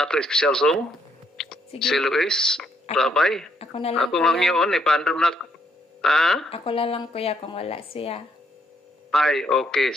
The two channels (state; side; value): normal; both; correlation 0.72